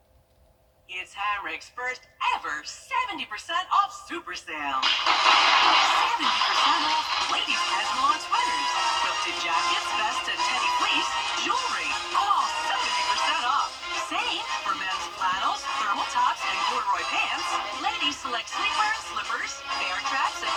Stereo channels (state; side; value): identical; both; correlation 1.00